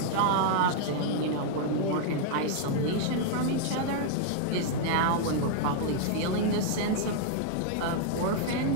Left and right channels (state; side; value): different; both; correlation -0.01